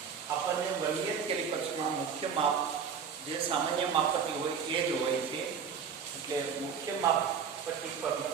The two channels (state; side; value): quieter; left; 6.7 dB